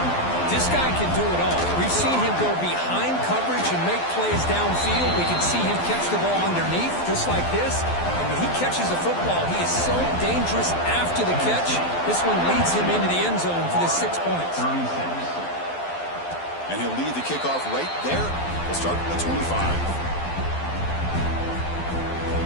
This guy can do it all. We've seen him go behind coverage and make plays downfield. We can see him catch the ball underneath, just like this. And when he catches the football, he is so dangerous after the catch. This one leads him into the end zone for the 6 points. And he'll lead the kickoff right there. We'll start at the 25.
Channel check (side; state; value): right; late; 12 ms